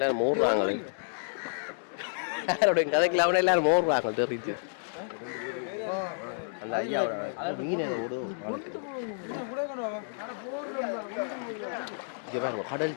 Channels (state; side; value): silent; right; digital silence